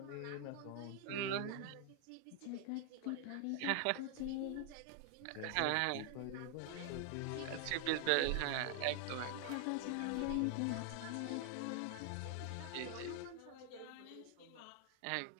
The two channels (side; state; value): both; different; correlation 0.00